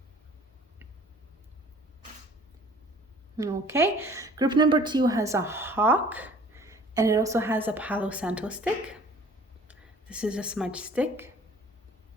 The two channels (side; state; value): both; normal; correlation 0.51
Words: Okay, group number 2 has a hawk, and it also has a Palo Santo stick. This is a smudge stick.